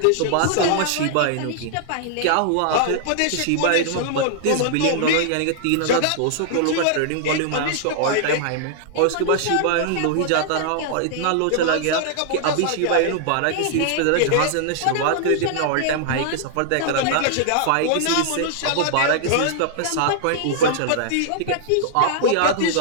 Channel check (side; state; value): both; different; correlation -0.01